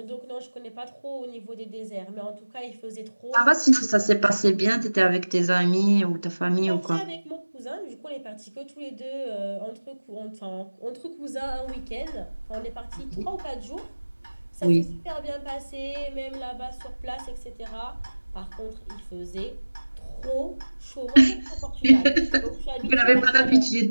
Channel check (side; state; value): both; inverted; correlation -1.00